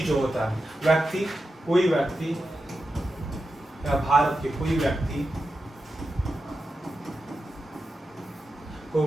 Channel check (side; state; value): both; normal; correlation 0.90